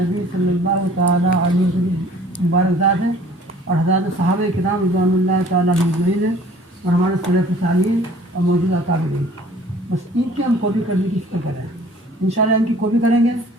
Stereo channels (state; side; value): normal; both; correlation 0.52